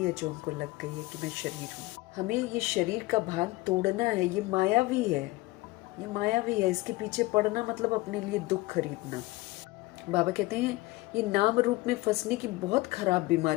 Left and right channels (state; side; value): quieter; right; 20.6 dB